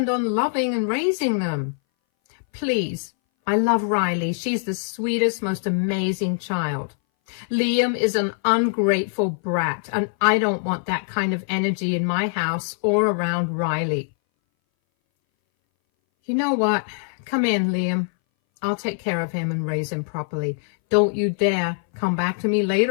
on loving and raising them? Please, I love Riley. She's the sweetest, most amazing child. Liam is an ungrateful brat, and I don't want that kind of energy in my house or around Riley. You know what? Come in, Liam. I'll take care of him and raise him properly. Don't you dare come back to me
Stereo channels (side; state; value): right; silent; 60 dB below the other